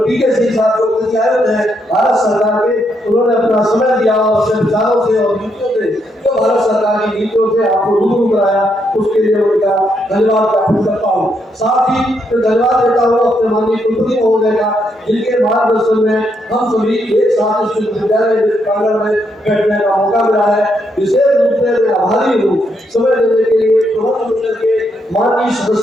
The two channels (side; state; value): both; normal; correlation 0.77